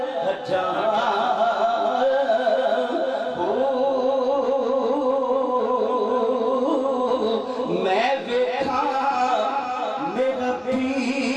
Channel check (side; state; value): both; identical; correlation 1.00